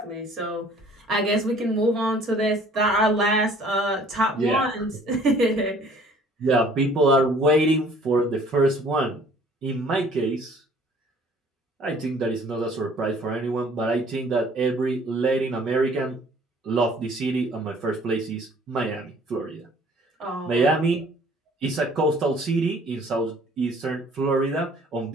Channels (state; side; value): normal; both; correlation 0.55